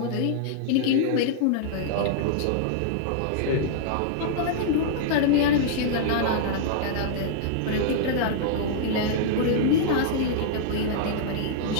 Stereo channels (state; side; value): different; both; correlation -0.01